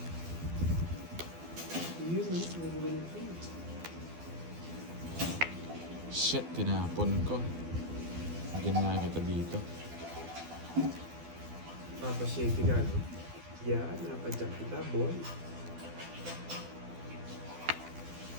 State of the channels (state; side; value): late; left; 12 ms